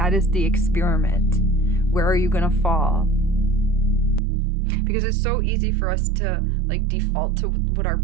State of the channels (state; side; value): drops out; left; at 4.2 s